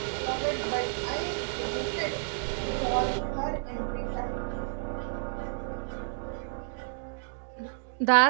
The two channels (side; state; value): left; silent; digital silence